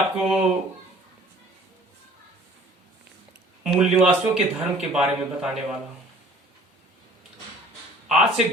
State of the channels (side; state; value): both; normal; correlation 0.52